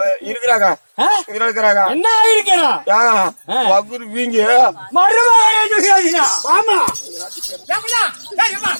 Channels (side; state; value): both; inverted; correlation -1.00